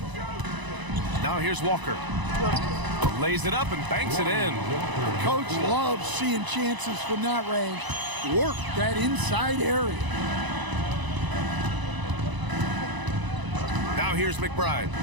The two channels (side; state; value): left; late; 1.0 ms